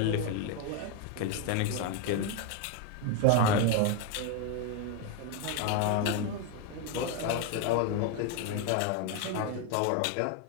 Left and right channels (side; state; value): both; different; correlation 0.02